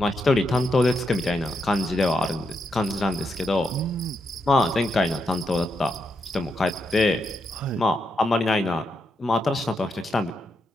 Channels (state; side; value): normal; both; correlation 0.82